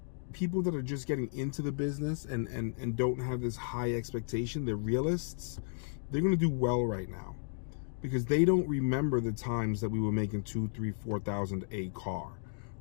people that are just getting into the business and don't have this high expectation, they're realists, they're going to do well right now because they don't remember the times that we were making $2,000, $3,000, $4,000 a car.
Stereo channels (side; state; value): right; silent; digital silence